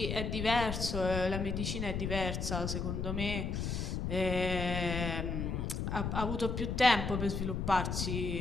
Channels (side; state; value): left; noise; rumble, 2 dB below the sound